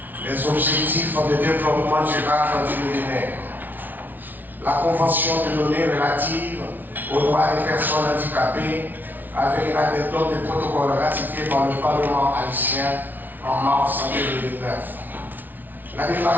les objectifs de développement durable du millénaire, la Convention de l'ONU relative aux droits des personnes handicapées avec la méthode de protocole ratifié par le Parlement haïtien en mars 2009. La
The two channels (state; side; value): late; left; 0.085 ms